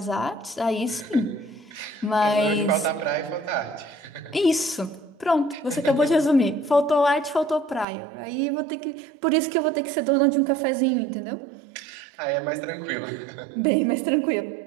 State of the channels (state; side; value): drops out; left; at 7.9 s